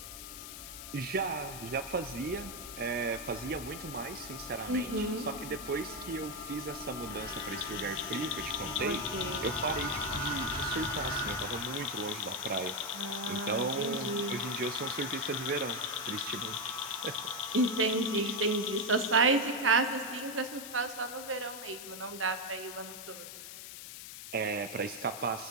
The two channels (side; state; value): left; noise; hiss, 10 dB below the sound